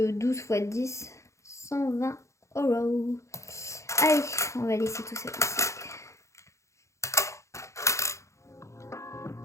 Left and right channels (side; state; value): right; late; 0.14 ms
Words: fois 10, 120 €. Allez, on va laisser tout ça ici.